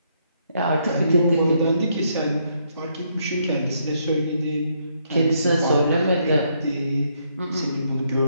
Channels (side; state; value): both; inverted; correlation -0.73